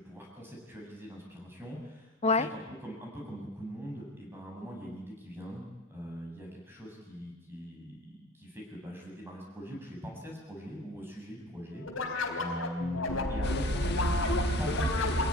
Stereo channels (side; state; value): both; normal; correlation 0.41